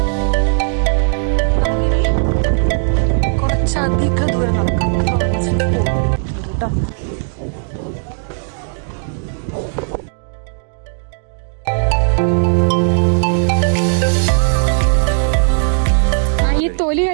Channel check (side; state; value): left; silent; digital silence